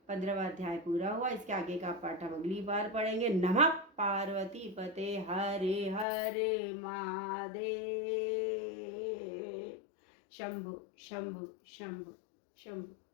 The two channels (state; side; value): drops out; right; at 6.1 s